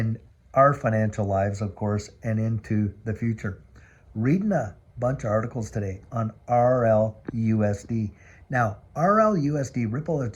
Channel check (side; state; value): both; identical; correlation 1.00